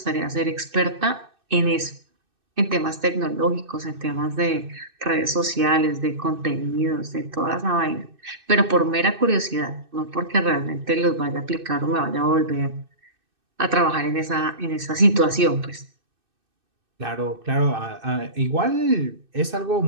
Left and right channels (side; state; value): left; late; 2.6 ms